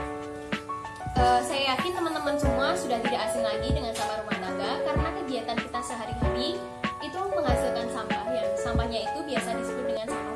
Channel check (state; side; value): identical; both; correlation 1.00